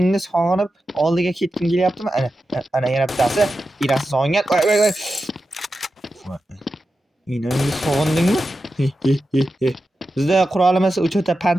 sog'inib oldiga ketgim kelyaptimi? Ana yana bittasi. Enasi sog'ingan. Voy. Enangni sog'indingmi? Bizda qurolimiz o'chota pand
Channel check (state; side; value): normal; both; correlation 0.91